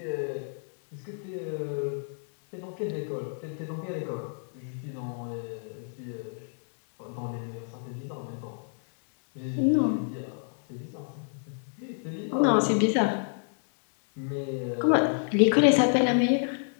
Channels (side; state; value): right; silent; digital silence